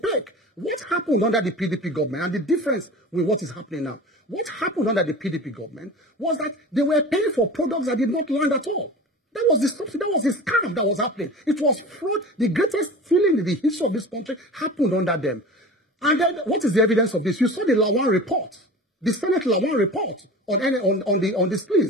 What happened under the PDP government, and the difference with what is happening now? What happened under the PDP government was that they were paying for products that did not land at all. That was the subsidy, that was the scam that was happening. It was fraud. The greatest stealing in the history of this country happened under them. And then, what is the evidence of this? You saw the Lawan report, the Senate Lawan report on the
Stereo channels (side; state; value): both; normal; correlation 0.35